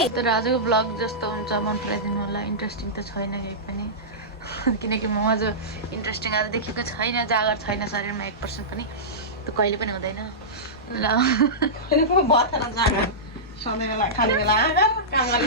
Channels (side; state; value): both; normal; correlation -0.16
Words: तर आजको ब्लग जस्तो हुन्छ मन पराइदिनु होला। इन्ट्रेस्टिङ त छैन केही पनि, किनकि म अझ इन्ट्रेस्टिङ आज देखेको छैन। जागर छैन शरीरमा 1% पनि, त्यो कहिले पनि हुँदैन ल।